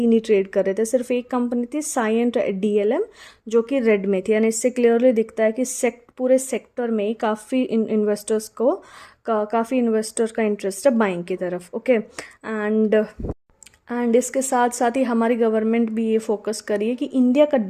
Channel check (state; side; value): identical; both; correlation 1.00